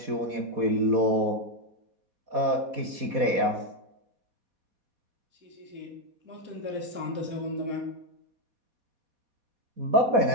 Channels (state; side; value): late; left; 4.2 ms